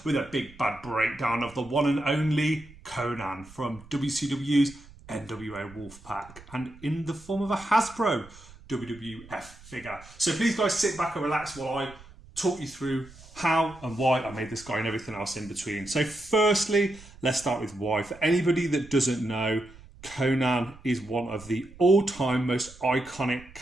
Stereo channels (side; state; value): right; noise; rumble, 21 dB below the sound